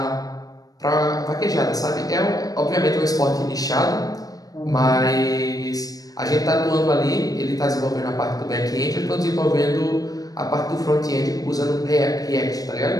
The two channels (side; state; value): right; late; 0.18 ms